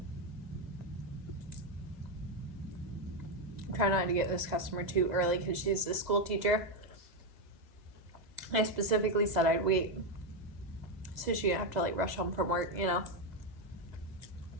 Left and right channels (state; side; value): late; left; 2.0 ms